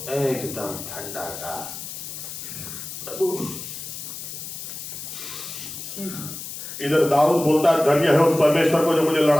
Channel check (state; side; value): noise; left; hiss, 9 dB below the sound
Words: एकदम ठंडा का इधर दाऊद बोलता है धन्य है उस परमेश्वर को जो मुझे